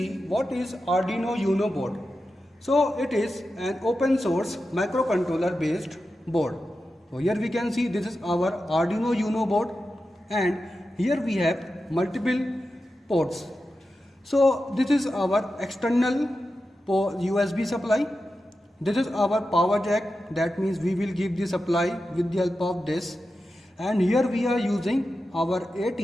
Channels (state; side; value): normal; both; correlation 0.91